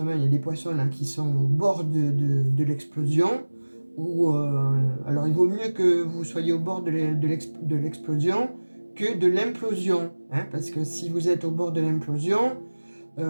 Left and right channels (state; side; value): inverted; both; correlation -1.00